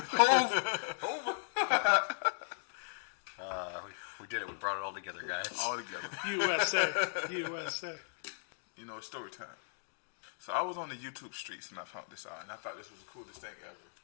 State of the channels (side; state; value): right; silent; digital silence